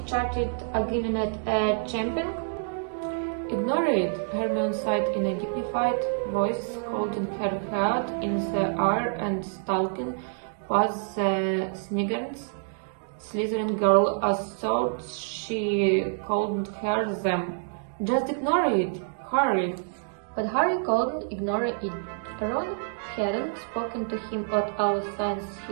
chatted giving it a champion? Ignore it, Hermione said in a dignified voice, holding her head in the air and stalking past the Slytherin girl as though she called her them. Just ignore it, Harry. But Harry couldn't ignore it. Ron hadn't spoken to him at all since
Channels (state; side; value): silent; left; digital silence